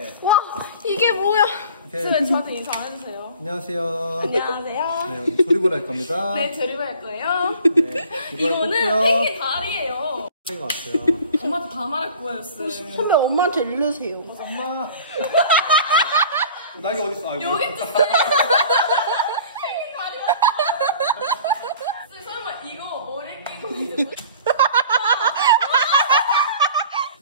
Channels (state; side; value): inverted; both; correlation -0.46